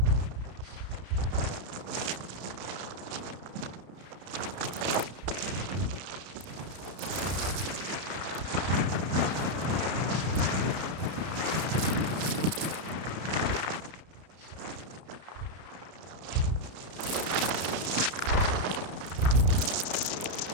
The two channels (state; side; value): late; left; 32 ms